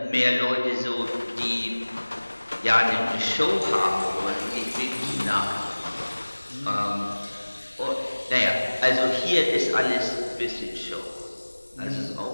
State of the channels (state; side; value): inverted; both; correlation -1.00